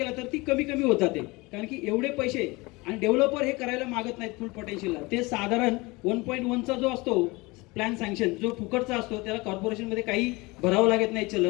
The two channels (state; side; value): quieter; right; 23.8 dB